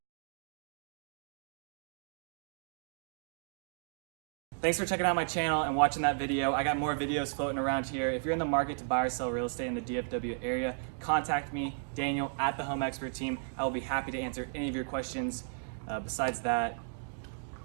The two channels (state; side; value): silent; left; digital silence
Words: Thanks for checking out my channel and watching that video. I got more videos floating around here. If you're in the market to buy or sell real estate in the DFW area, contact me, Daniel, at the Home Expert Team. I will be happy to answer any of your questions. Besides that,